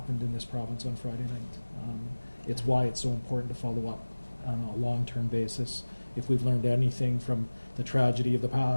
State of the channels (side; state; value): both; inverted; correlation -1.00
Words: in this province on Friday night. It's why it's so important to follow up on a long-term basis. If we've learned anything from the tragedy of the